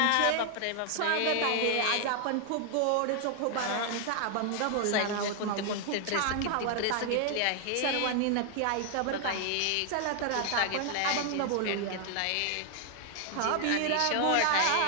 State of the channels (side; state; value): both; different; correlation 0.00